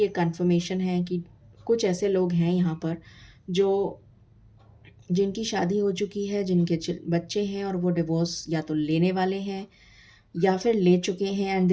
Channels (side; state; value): both; identical; correlation 1.00